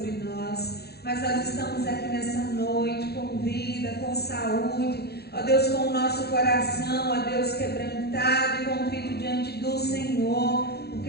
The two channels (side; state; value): right; late; 0.47 ms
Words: nós. Mas nós estamos aqui nessa noite com vida, com saúde, ó Deus, com o nosso coração, ó Deus, quebrantado e contrito diante do Senhor,